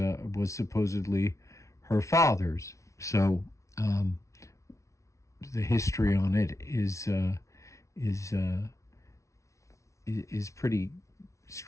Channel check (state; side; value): late; right; 0.14 ms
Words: supposedly her father's. So the history on it is pretty